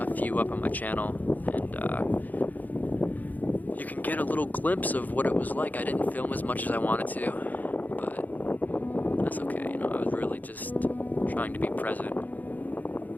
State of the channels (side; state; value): right; late; 0.082 ms